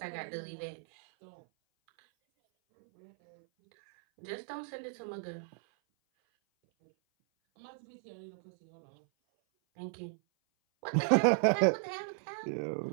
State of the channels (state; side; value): silent; left; 55 dB below the other